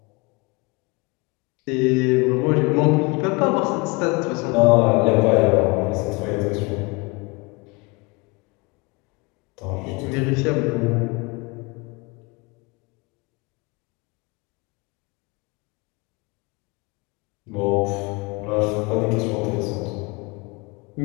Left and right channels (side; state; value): right; quieter; 27.1 dB